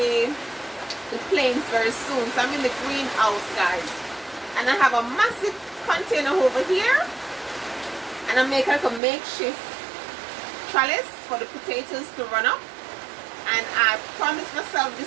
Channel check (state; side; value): drops out; left; at 9.0 s